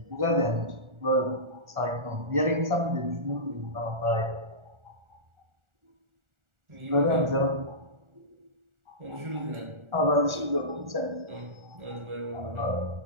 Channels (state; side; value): late; left; 1.4 ms